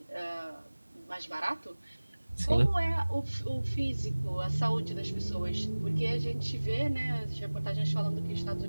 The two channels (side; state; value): both; inverted; correlation -1.00